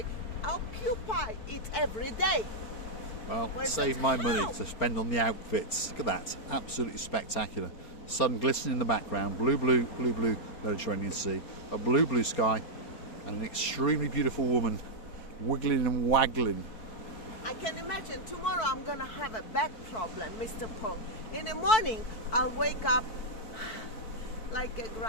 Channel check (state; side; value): late; right; 4.6 ms